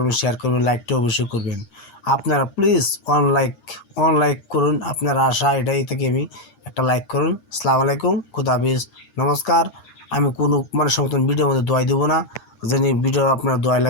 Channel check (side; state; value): right; late; 8.6 ms